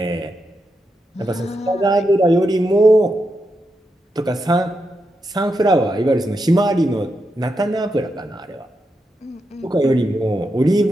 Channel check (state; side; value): normal; both; correlation 0.85